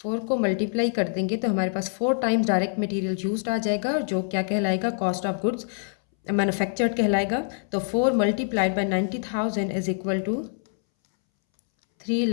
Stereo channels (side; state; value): right; silent; 62 dB below the other